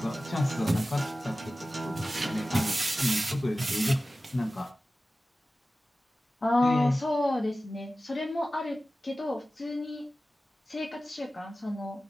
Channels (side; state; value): both; normal; correlation 0.96